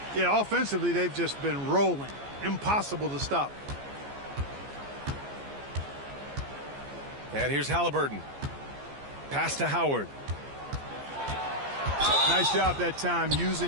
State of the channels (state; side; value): late; left; 14 ms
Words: Yeah, offensively, they've just been rolling. Impossible to stop. And here's Halliburton. Pass to Howard. Nice job that time